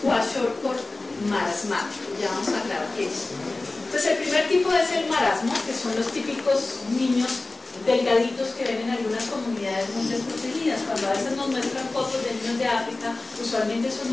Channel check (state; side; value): quieter; right; 3.1 dB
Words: kwashiorkor marasmático. Ya vamos a aclarar qué es. Entonces, el primer tipo es el marasmo, que son los típicos niños delgaditos que ven en algunas comunidades muy desprotegidas. Cuando a veces nos muestran fotos de niños de África, usualmente son